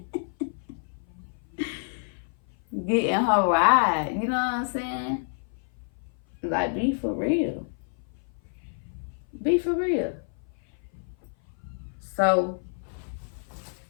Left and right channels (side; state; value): right; silent; 56 dB below the other